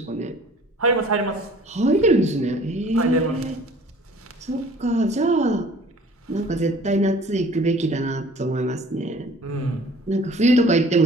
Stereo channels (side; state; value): both; normal; correlation 0.50